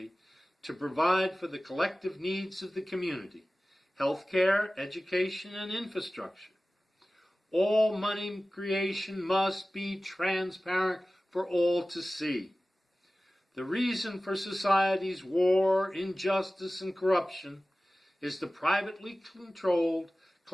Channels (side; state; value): both; normal; correlation 0.97